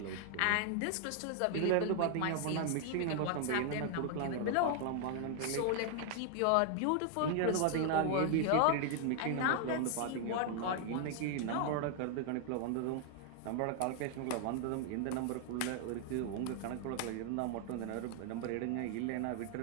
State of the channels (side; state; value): both; different; correlation 0.00